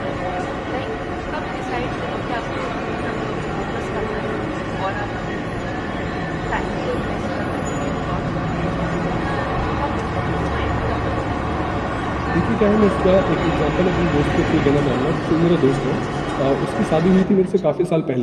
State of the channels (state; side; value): identical; both; correlation 1.00